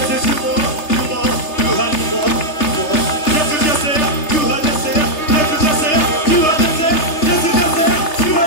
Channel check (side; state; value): right; late; 3.3 ms